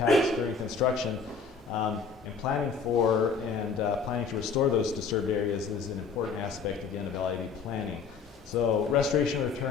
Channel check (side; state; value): right; quieter; 5.4 dB